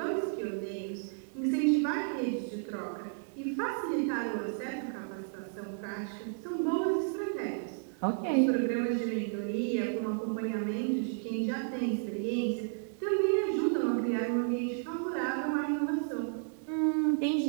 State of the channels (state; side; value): silent; left; 56 dB below the other